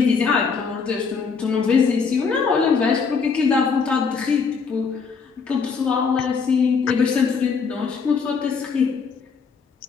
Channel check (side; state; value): right; quieter; 5.4 dB